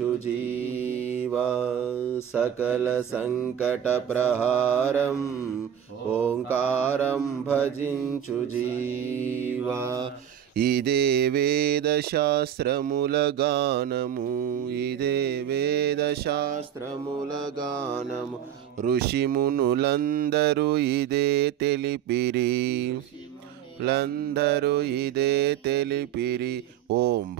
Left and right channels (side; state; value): left; quieter; 9.7 dB